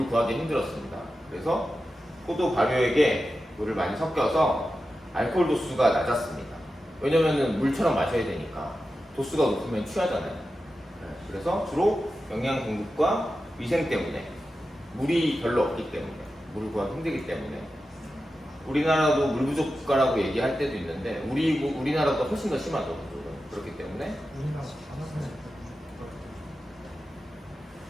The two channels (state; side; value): normal; both; correlation 0.92